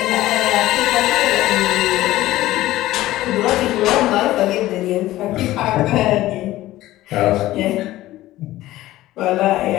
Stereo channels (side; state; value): right; quieter; 16.0 dB